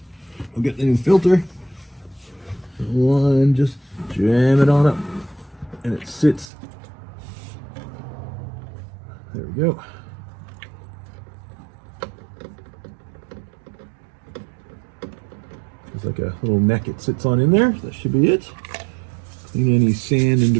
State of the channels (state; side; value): drops out; left; at 6.5 s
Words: we'll get the new filter. One, just jam it on up and it sits. There we go. There's like a little neck it sits on in there. That should be it. Clean any sand and